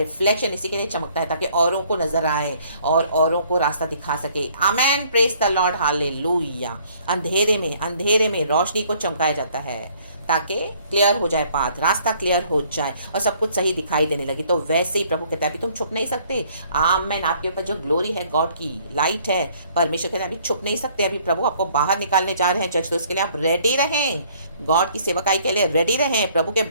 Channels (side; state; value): both; inverted; correlation -0.61